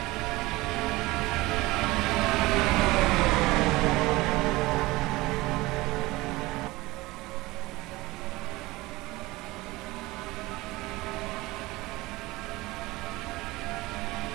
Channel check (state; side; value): quieter; left; 20.4 dB